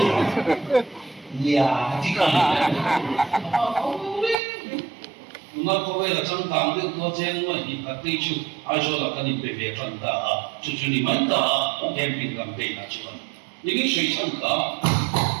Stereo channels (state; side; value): drops out; left; at 4.4 s